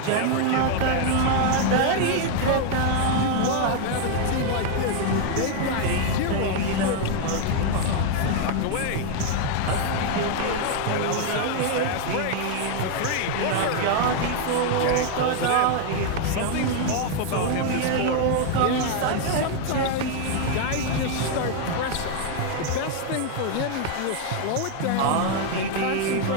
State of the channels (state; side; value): different; both; correlation 0.00